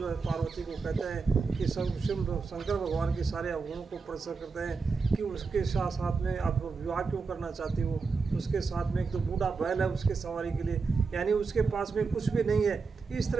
है पार्वती को कहते हैं कि शंकर भगवान के सारे अवगुणों को प्रदर्शित करते हैं कि उसके साथ साथ में आप विवाह क्यों करना चाहती हो, उसके साथ में एक तो बूढ़ा बैल है उसके सवारी के लिए, यानी उसके पास में कुछ भी नहीं है। इस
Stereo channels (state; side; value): quieter; left; 4.7 dB